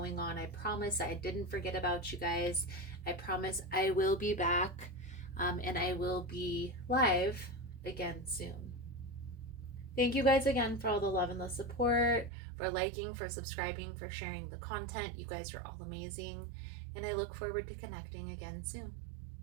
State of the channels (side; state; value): left; drops out; at 12.3 s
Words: on. I promise I didn't forget about you guys. I promise I will be back and I will be live again soon. Thank you guys again for all the love and the support, for liking, for subscribing, for sharing the content. You guys are all amazing. And I look forward to connecting again soon.